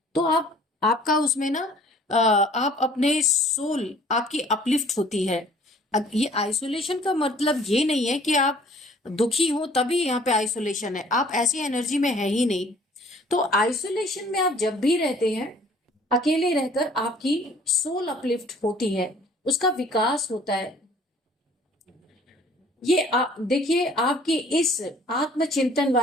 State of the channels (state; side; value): normal; both; correlation 0.54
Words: तो आपका उसमें ना आप अपने सोल आपकी अपलिफ्ट होती है। ये आइसोलेशन का मतलब ये नहीं है कि आप दुखी हो तभी यहाँ पे आइसोलेशन है, आप ऐसी एनर्जी में है ही नहीं। तो आइसोलेशन में आप जब भी रहते हैं, अकेले रहकर आपकी सोल अपलिफ्ट होती है, उसका विकास होता है। ये देखिए, आपकी इस आत्मचिंतन